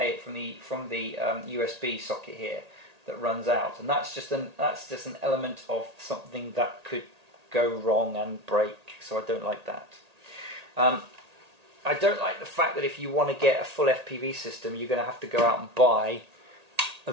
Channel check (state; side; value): late; left; 1.8 ms